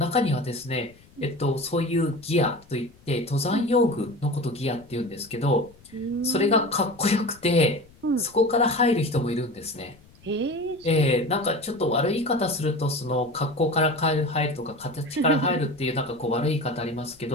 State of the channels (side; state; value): left; noise; rumble, 27 dB below the sound